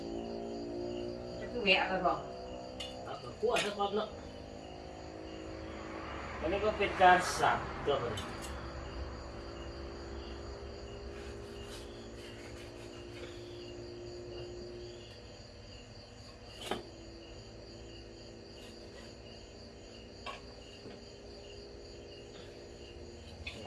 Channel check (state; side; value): identical; both; correlation 1.00